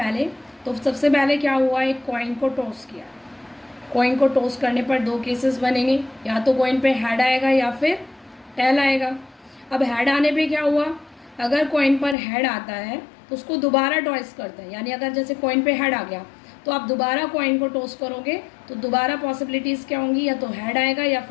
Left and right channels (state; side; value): drops out; right; at 12.2 s